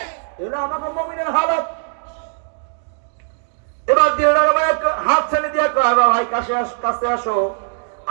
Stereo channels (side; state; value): left; silent; digital silence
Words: এটা আমাদের মুমিনের হালত। এবার দিলটার হাত ছেড়ে দিয়া কয়, ভাই কাছে আসো,